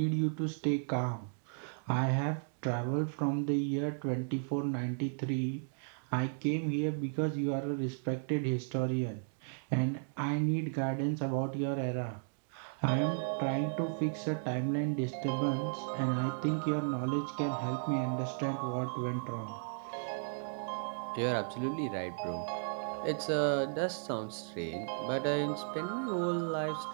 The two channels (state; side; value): silent; left; digital silence